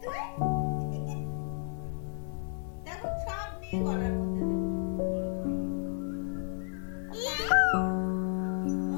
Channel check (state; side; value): silent; right; digital silence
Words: তুই? দেখো সব নিয়ে গলার মধ্যে দেবে। ও